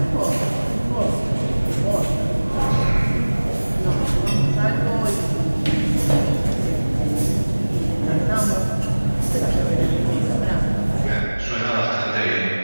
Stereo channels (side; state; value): both; inverted; correlation -1.00